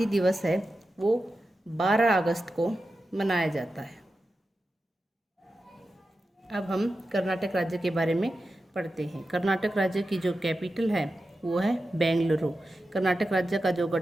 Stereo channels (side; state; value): both; normal; correlation 0.91